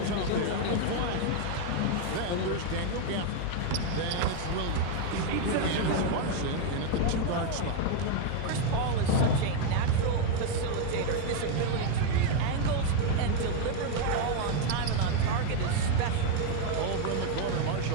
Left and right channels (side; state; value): both; different; correlation 0.01